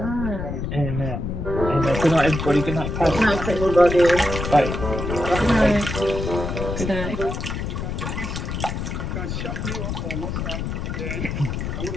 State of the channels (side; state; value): left; noise; rumble, 4 dB below the sound